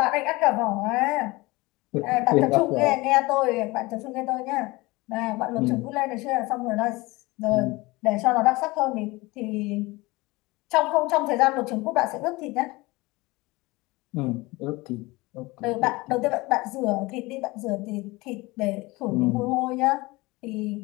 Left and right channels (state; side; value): quieter; right; 22.3 dB